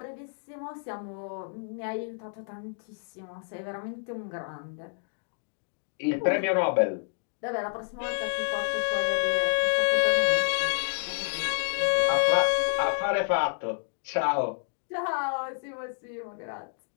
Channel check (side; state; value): right; silent; 58 dB below the other